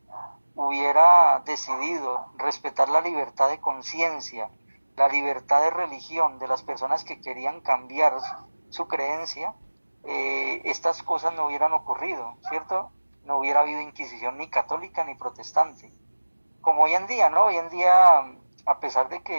hubiera decidido respetar la libertad de conciencia, la libertad de religión de las personas que querían cambiar su creencia, estas cosas no hubieran ocurrido, ¿cierto? No hubiera habido inquisición ni católica ni protestante. Como hoy en día, ¿no? Hoy en día, a pesar de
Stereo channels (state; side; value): inverted; both; correlation -1.00